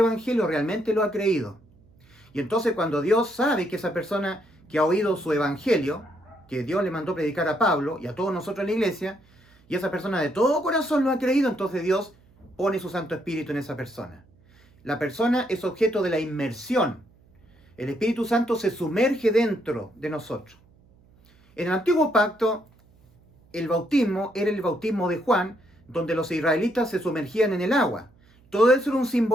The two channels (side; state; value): right; noise; hum, 30 dB below the sound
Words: realmente lo ha creído. Y entonces cuando Dios sabe que esa persona que ha oído su Evangelio, que Dios le mandó predicar a Pablo y a todos nosotros en la iglesia, y esa persona de todo corazón lo ha creído, entonces Dios pone su Santo Espíritu en esa persona. La persona es objeto de la inmersión. El Espíritu Santo se sumerge dentro de nosotros. En el Antiguo Pacto, el bautismo era el bautismo de Juan, donde los israelitas se sumergían en el agua. Todo eso era un